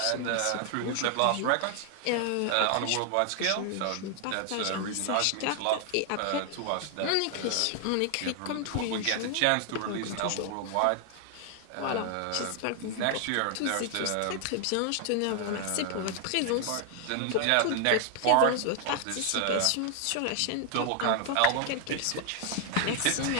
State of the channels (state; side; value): different; both; correlation 0.00